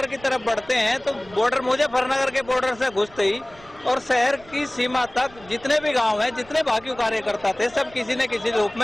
की तरफ बढ़ते हैं तो बॉर्डर, मुजफ्फरनगर के बॉर्डर से घुसते ही और शहर की सीमा तक जितने भी गांव हैं, जितने भाकियू कार्यकर्ता थे, सब किसी न किसी रूप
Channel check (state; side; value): noise; right; rumble, 24 dB below the sound